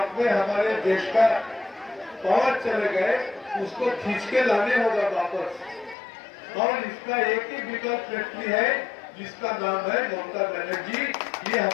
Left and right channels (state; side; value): drops out; right; at 6.0 s